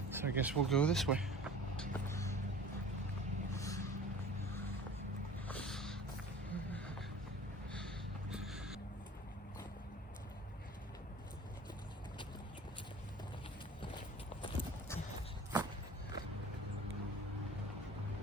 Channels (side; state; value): both; normal; correlation 0.43